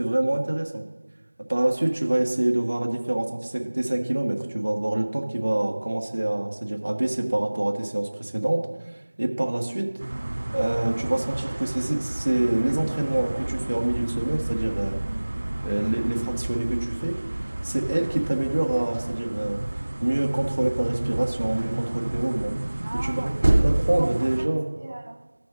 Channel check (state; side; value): inverted; both; correlation -1.00